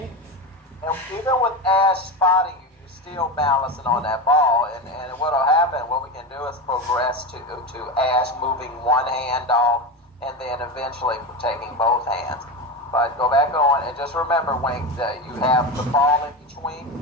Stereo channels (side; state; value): both; normal; correlation 0.20